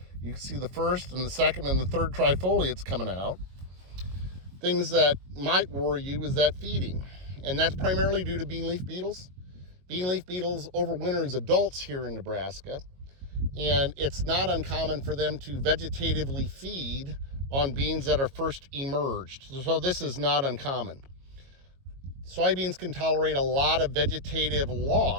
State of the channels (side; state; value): left; late; 22 ms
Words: You can see the first and the second and the third trifoliates coming out. Things that might worry you is that feeding, and that's primarily due to bean leaf beetles. Bean leaf beetles overwinter as adults here in Nebraska, and it's not uncommon for them to vegetatively feed on beans that are first emerged. So this is not uncommon. Soybeans can tolerate a lot of vegetative